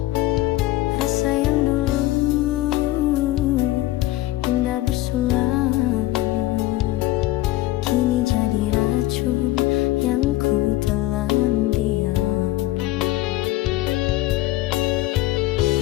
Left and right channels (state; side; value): quieter; right; 16.9 dB